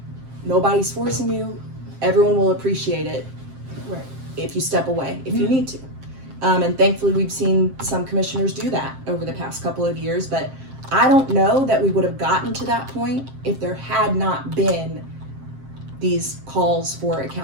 Nobody's forcing you. Everyone will appreciate it. Right. If you step away, if you need to. And thankfully we've seen some commissioners do that over the past couple of years, but I don't know that we would have gotten to that point if there had not been these calls for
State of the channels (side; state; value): left; late; 7.6 ms